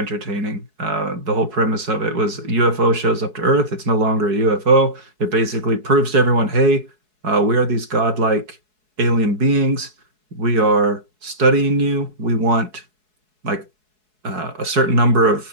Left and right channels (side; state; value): left; late; 4.7 ms